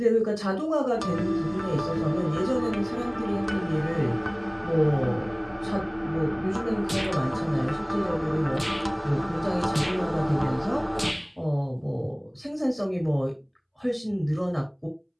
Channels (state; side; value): identical; both; correlation 1.00